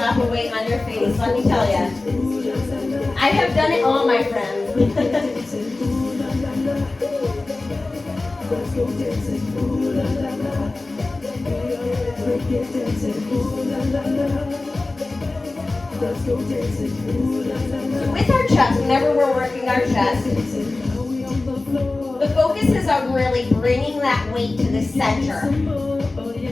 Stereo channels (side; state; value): right; quieter; 3.2 dB